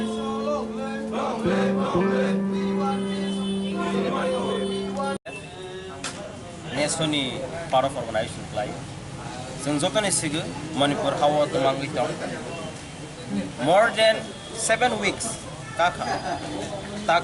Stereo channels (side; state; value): both; identical; correlation 1.00